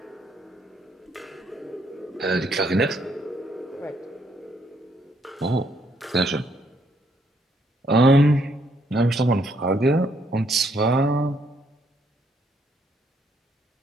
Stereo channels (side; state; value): both; normal; correlation 0.71